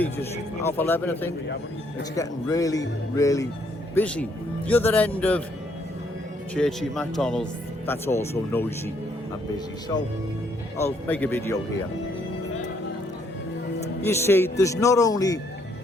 just 11:30 I think. It's getting really, really busy. The other end of Churchy McDonald's, that's also noisy and busy. So I'll make a video here. You see, there's not only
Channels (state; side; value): normal; both; correlation 0.70